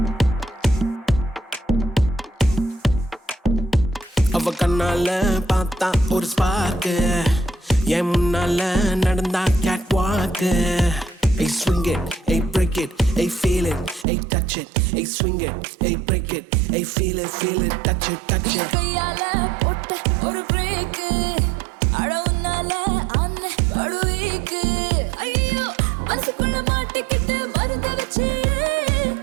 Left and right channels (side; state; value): left; drops out; at 14.1 s